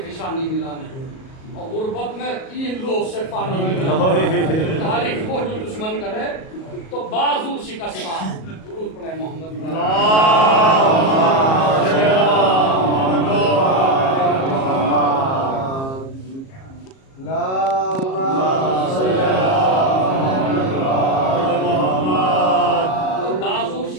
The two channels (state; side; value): late; right; 37 ms